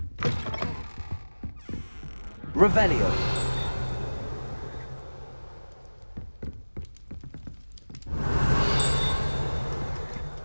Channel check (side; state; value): both; inverted; correlation -1.00